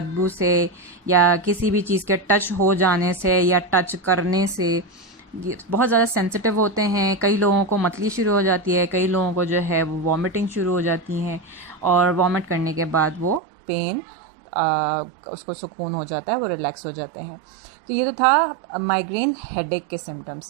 से, या किसी भी चीज़ के टच हो जाने से या टच करने से बहुत ज़्यादा सेंसिटिव होते हैं। कई लोगों को मतली शुरू हो जाती है, कई लोगों को जो है वो वॉमिटिंग शुरू हो जाती हैं और वॉमिट करने के बाद वो पेन उसको सुकून हो जाता है, वो रिलैक्स हो जाते हैं। तो ये तो था माइग्रेन हेडेक के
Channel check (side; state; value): left; drops out; at 13.4 s